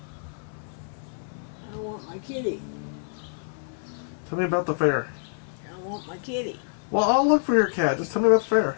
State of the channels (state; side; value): silent; right; 56 dB below the other